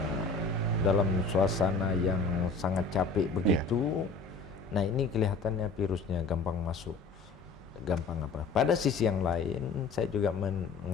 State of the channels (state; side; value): quieter; right; 4.3 dB